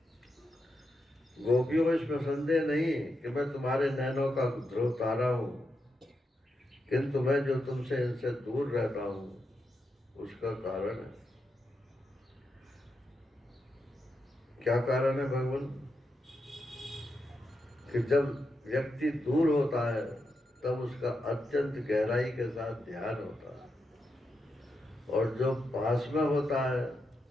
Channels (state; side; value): normal; both; correlation 0.85